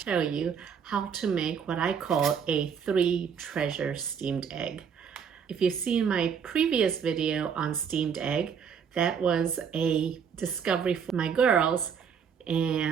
you how to make what I call a 3-treasure steamed egg. If you've seen my previous video on steamed egg, that was a discovery for my girls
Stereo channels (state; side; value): quieter; left; 7.1 dB